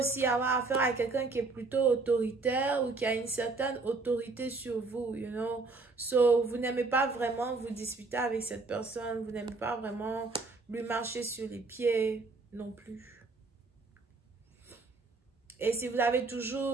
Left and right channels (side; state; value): left; quieter; 3.8 dB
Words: avoir affaire à quelqu'un qui est plutôt autoritaire ou qui a une certaine autorité sur vous, So, vous n'aimez pas vraiment vous disputer avec cette personne. Vous n'aimez pas vraiment lui marcher sur les pieds non plus. Et si vous avez